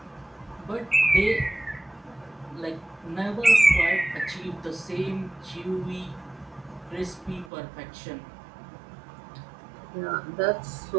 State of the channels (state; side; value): drops out; left; at 7.5 s